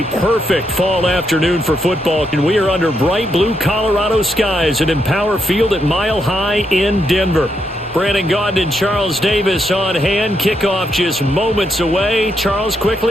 perfect fall afternoon for football, and we are under bright blue Colorado skies at Empower Field at Mile High in Denver. Brandon Gaudin and Charles Davis on hand. Kickoff just moments away. Charles,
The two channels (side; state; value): both; normal; correlation 0.79